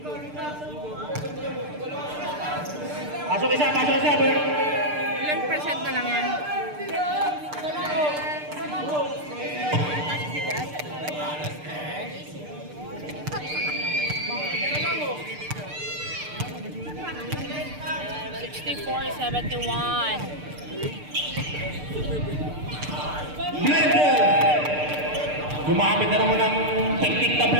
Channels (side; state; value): left; late; 6.7 ms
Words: Pasok isa, Sabret. Ilan percent na lang yan? Blender. Gumamit na naman ng technique na